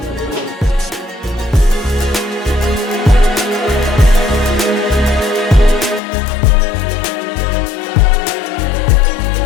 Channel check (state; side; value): drops out; right; at 6.0 s